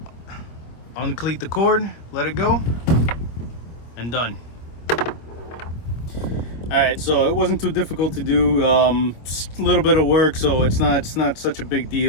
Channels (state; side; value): late; right; 26 ms